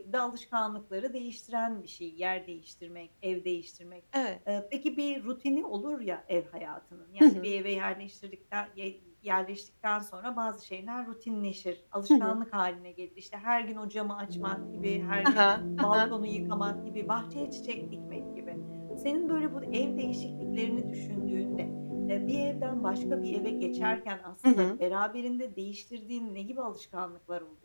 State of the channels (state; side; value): inverted; both; correlation -1.00